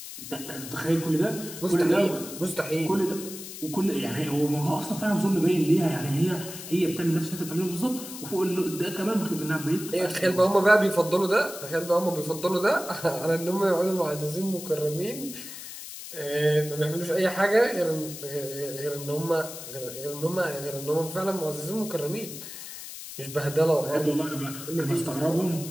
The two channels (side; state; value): left; noise; hiss, 11 dB below the sound